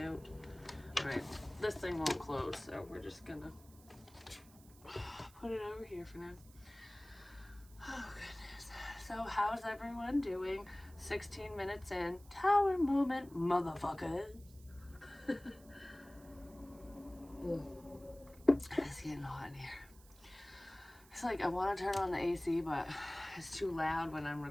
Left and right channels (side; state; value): right; noise; hiss, 24 dB below the sound